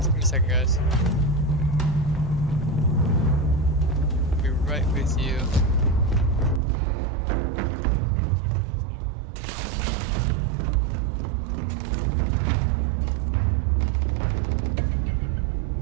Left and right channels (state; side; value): drops out; left; at 6.6 s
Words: Give me a second, guys. I'll be right with you. Enemy activity in.